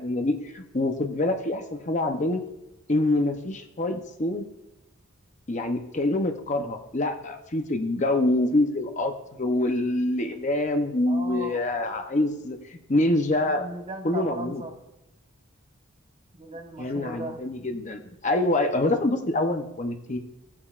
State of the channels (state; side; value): normal; both; correlation 0.49